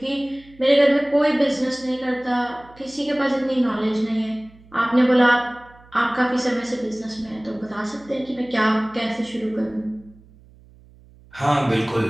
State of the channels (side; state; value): right; noise; hum, 26 dB below the sound